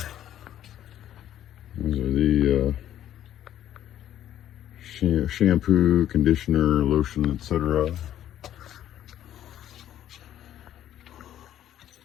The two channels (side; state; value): right; quieter; 11.5 dB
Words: These are the shampoo, conditioner, lotion, etc.